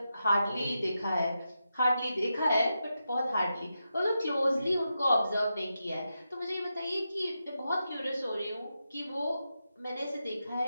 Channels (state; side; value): inverted; both; correlation -0.88